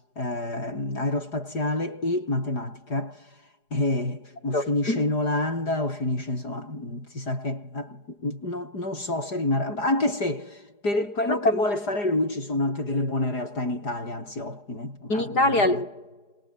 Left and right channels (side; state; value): right; late; 4.9 ms